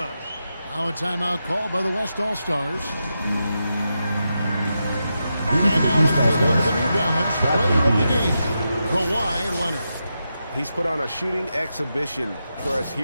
Now a timeout called by the West All-Stars. And now let's take a look at the New Balance player of the game, Kawhi Leonard. He's put on a shooting exhibition for us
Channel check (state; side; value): inverted; both; correlation -0.87